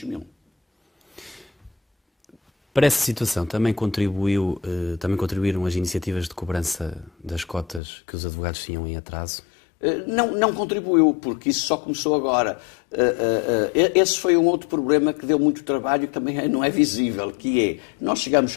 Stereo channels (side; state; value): right; drops out; at 7.8 s